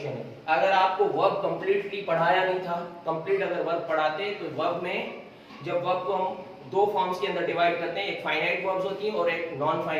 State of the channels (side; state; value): both; identical; correlation 1.00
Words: है। अगर आपको वर्ब कंप्लीटली पढ़ाया नहीं था, कंप्लीट अगर वर्ब पढ़ाते तो वर्ब में, जब वर्ब को हम दो फॉर्म्स के अंदर डिवाइड करते हैं, एक फाइनाइट वर्ब्स होती हैं और एक नॉन